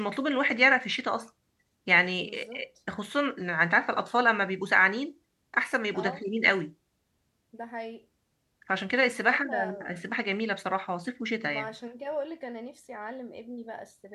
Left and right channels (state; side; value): identical; both; correlation 1.00